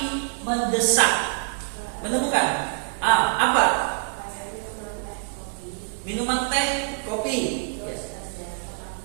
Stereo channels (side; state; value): left; silent; digital silence